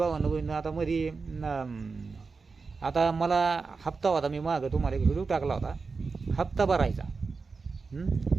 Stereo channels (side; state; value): left; quieter; 4.5 dB